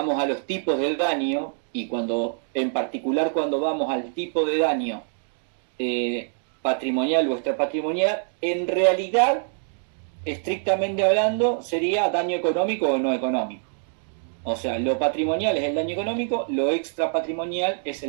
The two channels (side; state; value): left; silent; digital silence